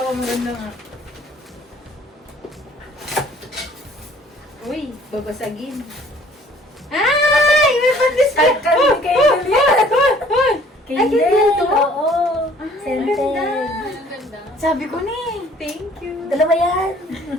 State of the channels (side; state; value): both; normal; correlation 0.55